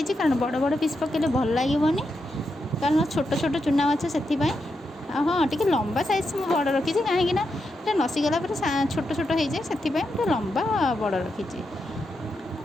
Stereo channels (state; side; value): normal; both; correlation 0.85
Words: कारण बड़ बड़ पिस पकड़े भल लगे कारण छोट छोट चूना माछ से। हाँ, टी लंबा साइज मुझे बड़ रखी कहीं नसीगला छोट छोट हो जाए से लंबा बड़ रखी।